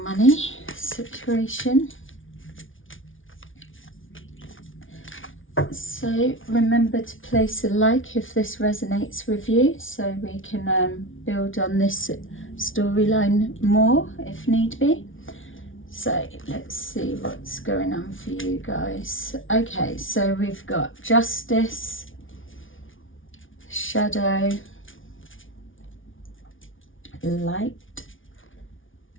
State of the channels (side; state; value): right; late; 0.57 ms